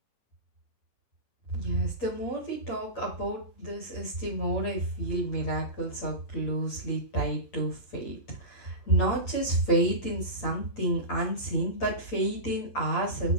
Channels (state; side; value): late; right; 8.7 ms